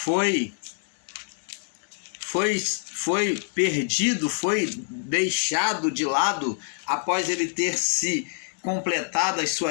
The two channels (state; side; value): silent; right; digital silence